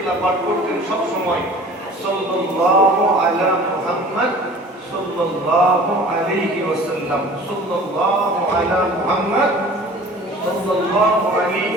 পাঠ করতেন সব সময় সাল্লাল্লাহু আলা মুহাম্মদ সাল্লাল্লাহু আলাইহি ওয়াসাল্লাম, সাল্লাল্লাহু আলা মুহাম্মদ সাল্লাল্লাহু আলাইহি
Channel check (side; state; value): both; normal; correlation 0.45